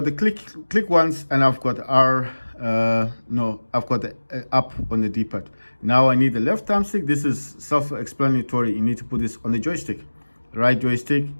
the click once, and I've got I've got the up on the D-pad. Now I need the left thumbstick. This is self-explanatory. You need to put this on the joystick. Right joystick,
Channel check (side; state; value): both; inverted; correlation -1.00